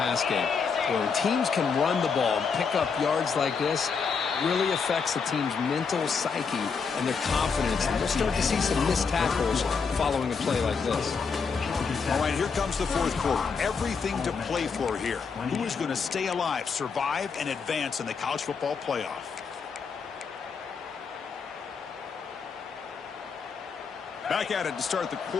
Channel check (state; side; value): quieter; right; 5.5 dB